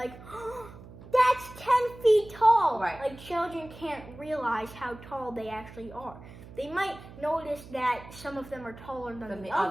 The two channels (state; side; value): noise; right; hum, 17 dB below the sound